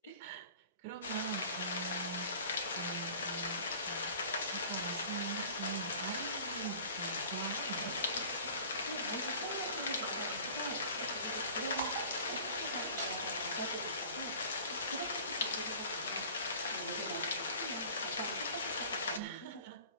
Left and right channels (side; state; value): both; inverted; correlation -0.44